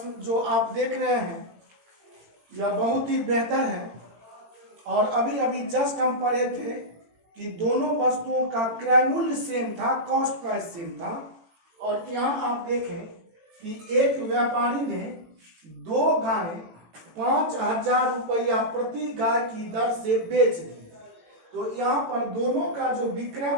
जो आप देख रहे हैं यह बहुत ही बेहतर है। और अभी अभी जस्ट हम पढ़े थे कि दोनों वस्तुओं का क्रय मूल्य सेम था, कॉस्ट प्राइस सेम था। और यहाँ आप देखें कि एक व्यापारी ने 2 गाय 5000 रुपया प्रति गाय की दर से बेच दी। तो यहाँ पर दोनों का जो विक्रय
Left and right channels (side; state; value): left; late; 18 ms